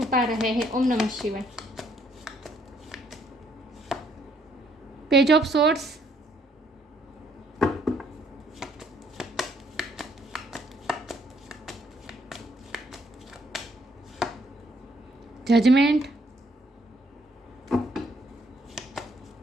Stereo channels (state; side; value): normal; both; correlation 0.68